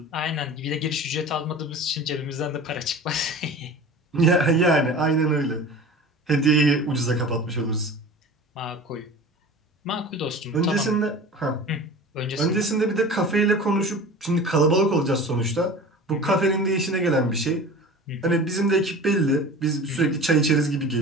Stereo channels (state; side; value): normal; both; correlation 0.37